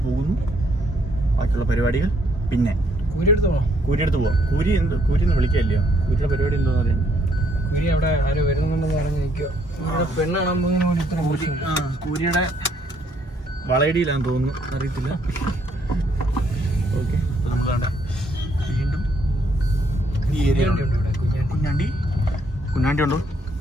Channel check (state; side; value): normal; both; correlation 0.70